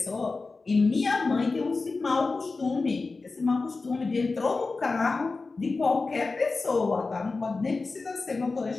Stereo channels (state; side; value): quieter; right; 3.9 dB